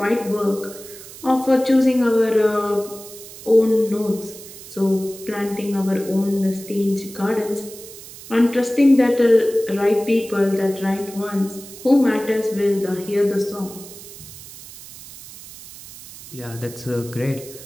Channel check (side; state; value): right; noise; hiss, 16 dB below the sound